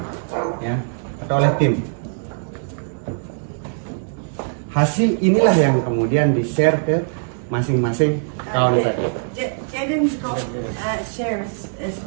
ya, atau oleh tim. Hasil inilah yang kemudian di-share ke masing-masing kawan tadi. Devin got shares as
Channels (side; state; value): left; silent; digital silence